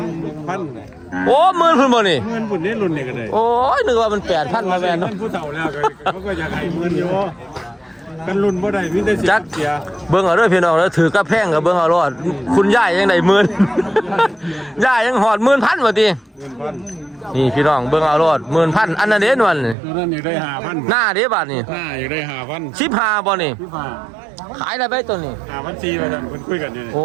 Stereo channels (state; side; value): drops out; left; at 19.8 s